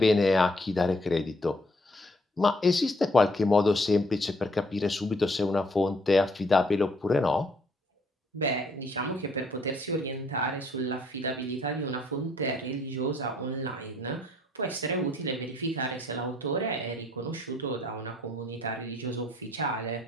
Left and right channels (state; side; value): normal; both; correlation 0.65